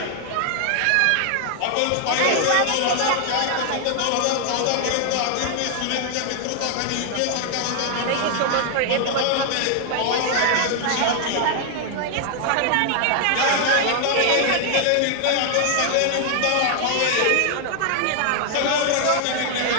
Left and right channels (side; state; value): both; different; correlation 0.00